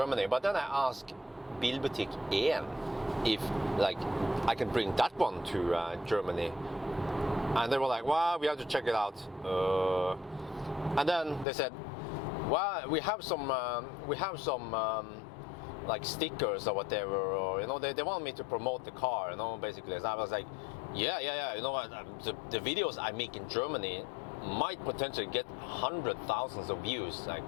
But then I asked Bilbutik 1 if I can bring that one to Germany. And they were like, well, we have to check it out. And then they said, well, we have some stickers or whatever, or they want me to promote the car, basically. So I was like, yeah, the videos I make in Germany might potentially get 100,000 of views, like,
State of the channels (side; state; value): right; drops out; at 11.5 s